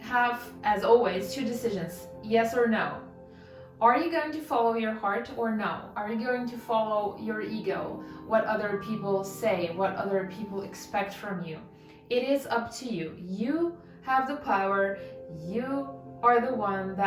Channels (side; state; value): both; identical; correlation 1.00